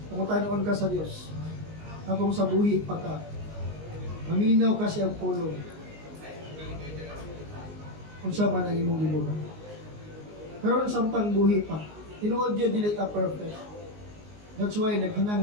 Pangutanon ka sa Dios. Habang sa buhi pa ka, maminaw ka siyang pulong. Unsa man ang imong gibuhat. Pero samtang buhi pa, tinuod yun dili ka perfect. That's why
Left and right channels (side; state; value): left; late; 19 ms